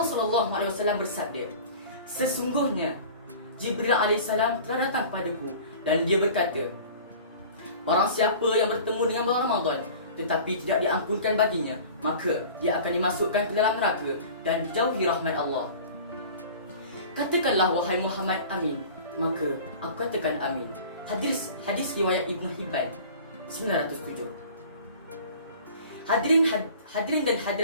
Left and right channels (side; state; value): both; inverted; correlation -0.42